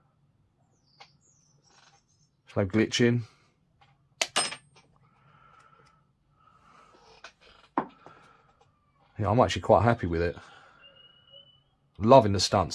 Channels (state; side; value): identical; both; correlation 1.00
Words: There's no glitching. Yeah, I'm actually quite happy with it. Loving the